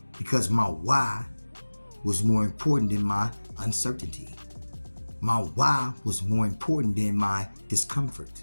Because my why was more important than my uncertainty. My why was more important than my discomfort.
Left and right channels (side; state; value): both; inverted; correlation -1.00